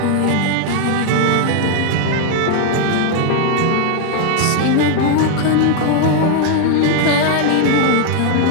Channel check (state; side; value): different; both; correlation 0.00